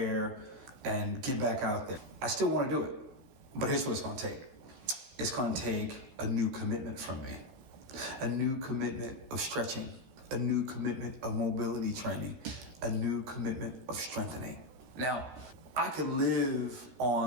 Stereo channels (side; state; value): left; late; 15 ms